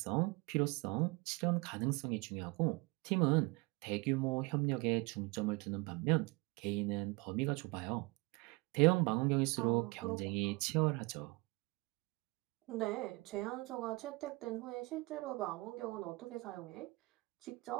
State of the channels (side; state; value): left; quieter; 24.8 dB